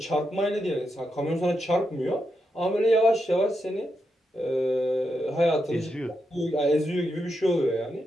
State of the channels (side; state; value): both; normal; correlation 0.84